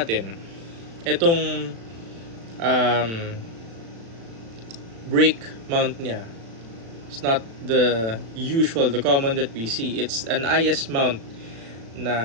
itong brake mount niya, it's not the common that we see. It's an IS mount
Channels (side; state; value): left; late; 36 ms